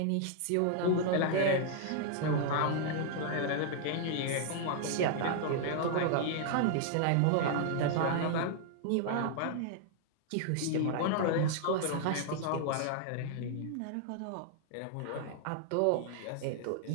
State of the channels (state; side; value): different; both; correlation -0.01